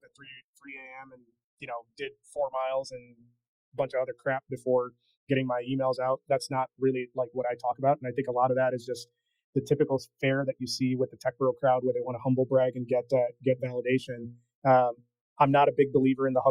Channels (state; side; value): identical; both; correlation 1.00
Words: at 3 a.m. and did 4 miles and a bunch of other crap before getting my emails out. That's not really like what I talk about, and I think a lot of that is just the typical fare that you see with the tech bro crowd, where they want to humble brag and get validation. I'm not a big believer in the